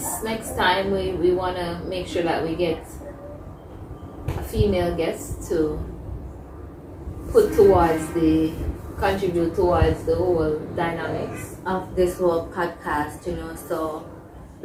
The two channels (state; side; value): identical; both; correlation 1.00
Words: time we want to make sure that we get a female guest to contribute towards the whole dynamics of this whole podcast, you know. So